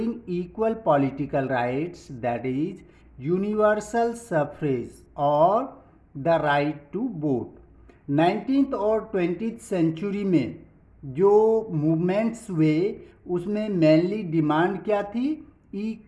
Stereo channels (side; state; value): both; identical; correlation 1.00